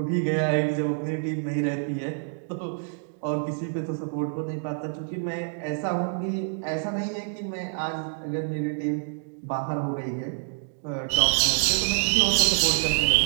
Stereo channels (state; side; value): silent; left; digital silence